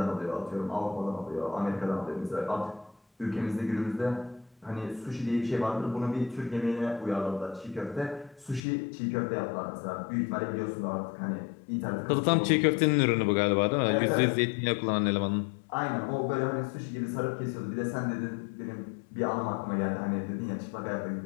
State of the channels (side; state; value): right; drops out; at 8.6 s